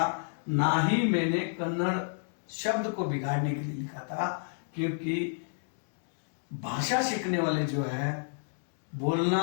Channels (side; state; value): right; silent; digital silence